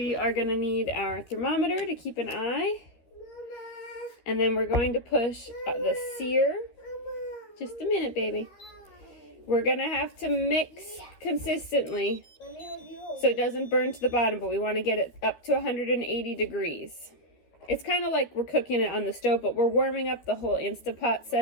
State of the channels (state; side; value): late; right; 13 ms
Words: are going to need our thermometer to keep an eye. And then we're going to push the sear. Just a minute, baby. We're going to have to mix consistently so it doesn't burn to the bottom, but we want to get it up to 180 degrees. It's kind of like we're cooking it on the stove, but we're warming up the whole Instapot